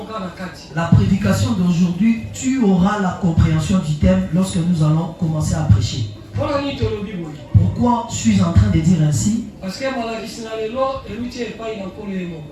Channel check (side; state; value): both; identical; correlation 1.00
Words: La prédication d'aujourd'hui, tu auras la compréhension du thème lorsque nous allons commencer à prêcher. Pourquoi je suis en train de dire ainsi? Parce